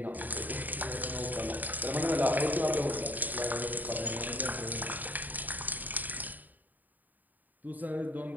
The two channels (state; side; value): late; left; 0.085 ms